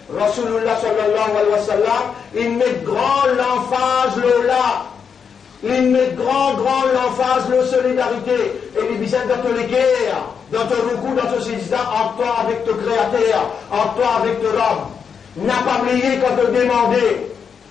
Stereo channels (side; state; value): right; quieter; 6.7 dB